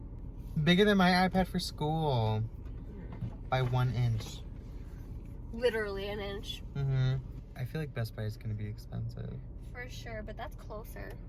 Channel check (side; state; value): both; identical; correlation 1.00